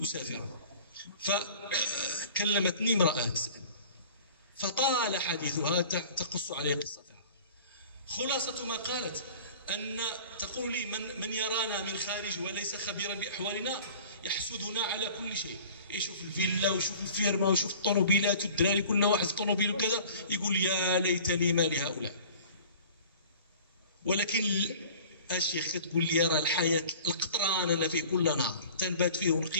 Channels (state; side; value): inverted; both; correlation -0.44